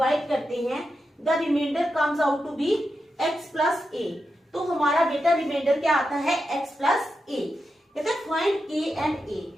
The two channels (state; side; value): normal; both; correlation 0.88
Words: करते हैं, the remainder comes out to be x plus a. तो हमारा बेटा रिमाइंडर क्या आता है? x plus a. कहता है फाइंड k एंड a.